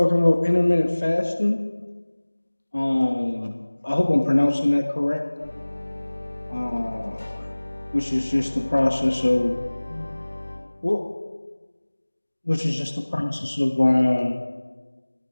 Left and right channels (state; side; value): inverted; both; correlation -1.00